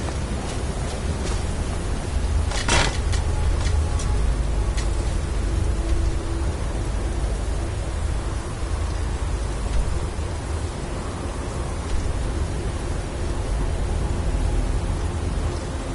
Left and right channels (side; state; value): both; identical; correlation 1.00